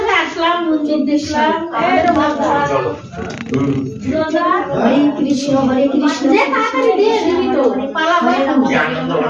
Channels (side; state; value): both; identical; correlation 1.00